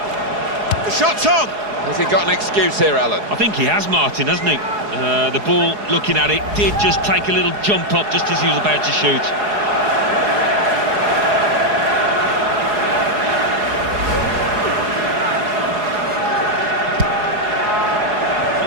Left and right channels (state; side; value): late; left; 4.8 ms